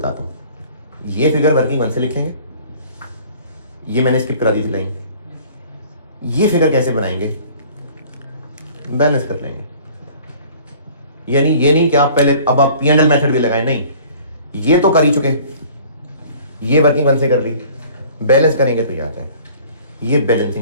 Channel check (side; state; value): both; inverted; correlation -0.50